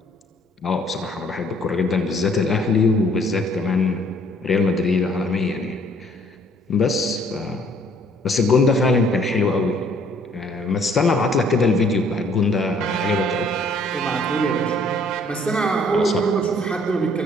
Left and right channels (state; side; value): normal; both; correlation 0.61